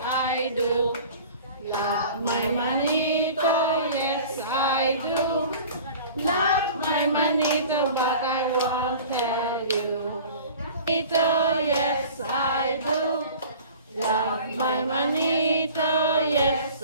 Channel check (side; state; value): both; inverted; correlation -0.43